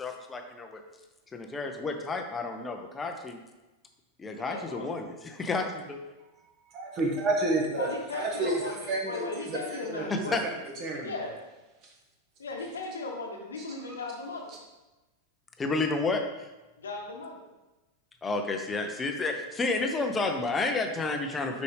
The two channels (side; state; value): both; normal; correlation 0.33